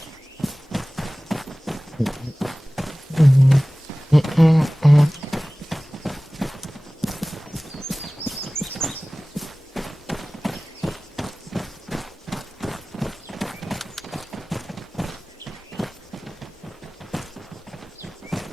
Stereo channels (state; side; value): normal; both; correlation 0.98